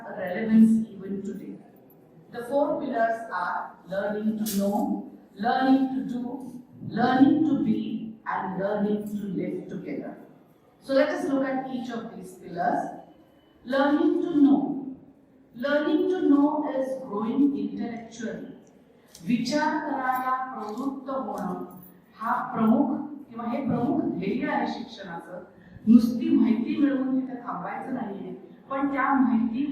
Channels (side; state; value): both; identical; correlation 1.00